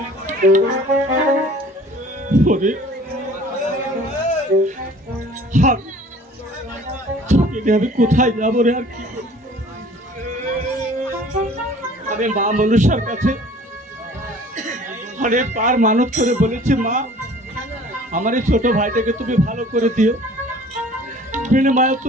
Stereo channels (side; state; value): both; normal; correlation 0.49